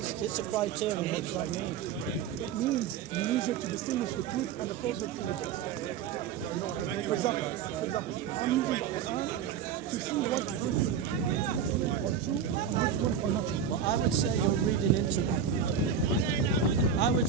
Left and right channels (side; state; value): left; quieter; 7.5 dB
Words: it's a criterion, what does that mean? It means you use it to distinguish the truth and the falsehood from the text. For example, I'm using the Quran to see what verses are true and which ones are not true. Well, I would say you're reading into that. I